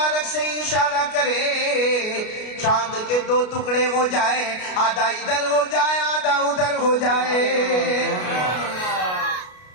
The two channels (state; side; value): late; right; 33 ms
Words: سے اشارہ کرے, چاند کے دو ٹکڑے ہو جائے, آدھا ادھر ہو جائے آدھا ادھر ہو جائے.